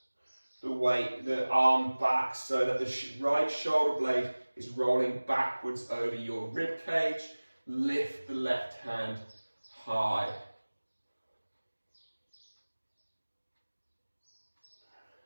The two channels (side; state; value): both; inverted; correlation -1.00